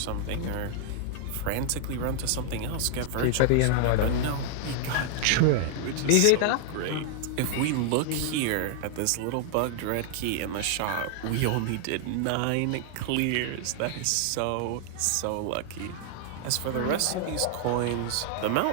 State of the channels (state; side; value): different; both; correlation -0.01